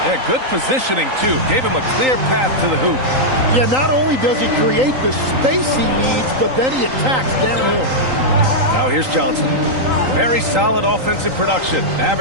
Yeah, good positioning, too. Gave him a clear path to the hoop. Yeah, not only does he create the space he needs, but then he attacks downhill. Now here's Johnson. Very solid offensive production,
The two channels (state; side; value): late; left; 3.9 ms